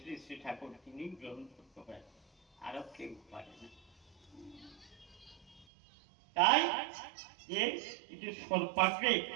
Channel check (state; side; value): drops out; left; at 5.7 s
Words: শ্রী ঠাকুর তিনি গ্রহণ করতে পারেন, আরো কেউ পারে না। তাই যে সর্বাগ্রে